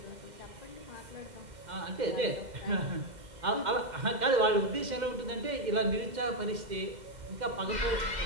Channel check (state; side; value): late; left; 2.1 ms